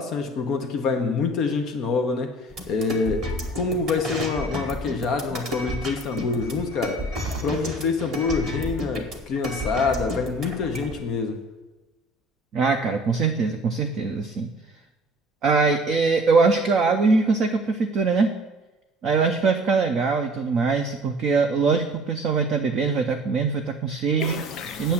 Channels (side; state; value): both; normal; correlation 0.48